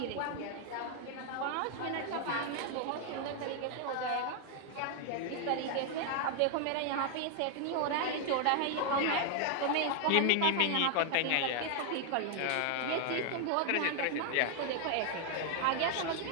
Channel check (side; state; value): both; different; correlation 0.00